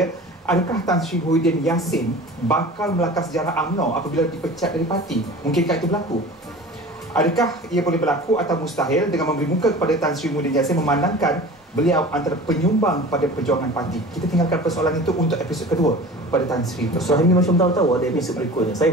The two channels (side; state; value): both; normal; correlation 0.39